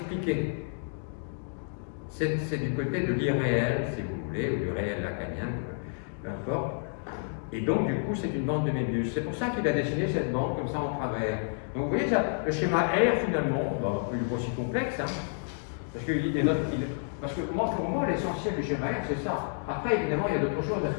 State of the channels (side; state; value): right; silent; digital silence